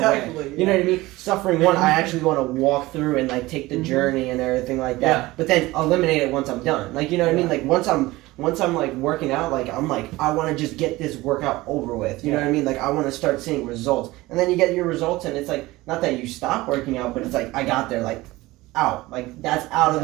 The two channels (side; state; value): left; quieter; 19.4 dB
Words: You know what I mean? Suffering one, I actually want to walk through and like take the journey and everything like that. Yeah. But then eliminate it once I'm done. Like, you know what I mean? Like once I'm like working out, like I'm like, I want to just get this workout over with. You know what I mean? Like I want to start seeing results. And then you get your results and it's like, not that you stop working out, but it's like, I got there, like out. Like that's out of